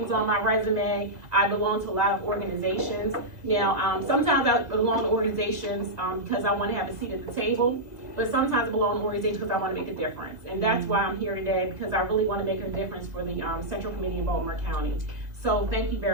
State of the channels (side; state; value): left; late; 1.9 ms